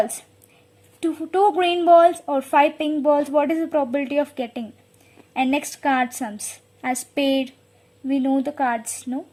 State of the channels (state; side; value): identical; both; correlation 1.00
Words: 2 green balls or 5 pink balls, what is the probability of getting? And next, card sums. As spade, we know the cards, no?